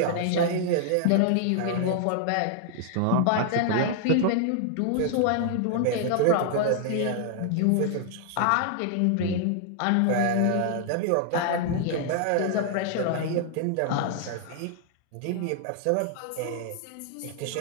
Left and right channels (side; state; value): both; different; correlation 0.00